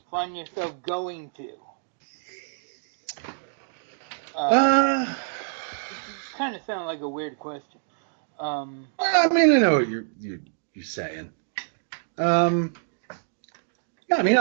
find yourself going to? kind of sounded like a weird question. I mean, I know what you're saying. Yeah, I mean,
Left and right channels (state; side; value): silent; left; digital silence